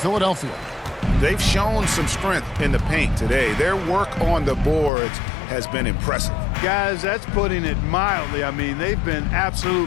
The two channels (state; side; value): drops out; right; at 4.9 s